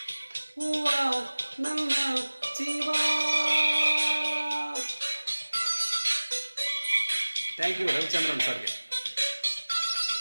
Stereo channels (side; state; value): both; inverted; correlation -1.00